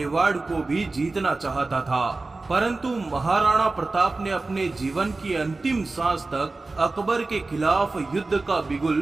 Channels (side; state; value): left; quieter; 3.4 dB